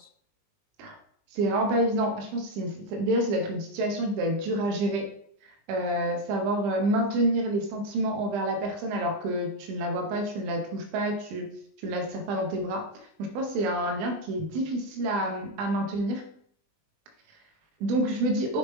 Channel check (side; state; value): left; late; 20 ms